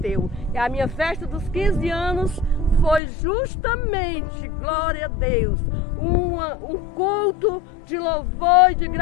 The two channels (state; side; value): drops out; right; at 3.0 s